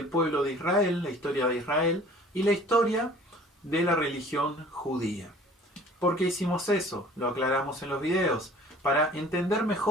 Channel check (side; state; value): both; normal; correlation 0.49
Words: pueblo de Israel, la historia de Israel, y la historia de la religión judía. ¿Por qué hicimos eso? Lo aclaramos en los videos, para entender